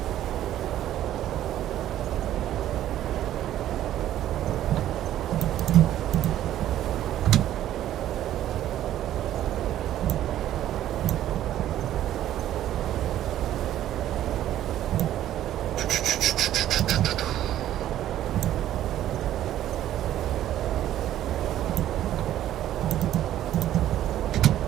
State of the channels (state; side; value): quieter; left; 12.4 dB